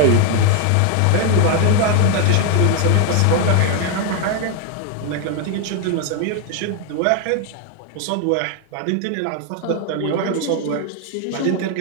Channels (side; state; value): both; different; correlation 0.01